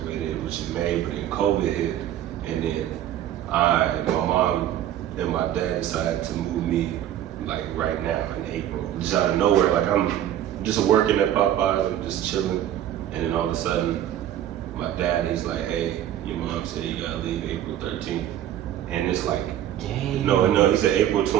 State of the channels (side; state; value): left; quieter; 11.6 dB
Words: which is May, but then COVID hit, and then my mom and my dad decided to move me like right now in April, just out of nowhere. Like I'm just working at Popeyes, I'm just chilling, and then all of a sudden, my dad, he's like, "Hey, your mom said you gotta leave April 13th." and it's like, Dang. no, he said April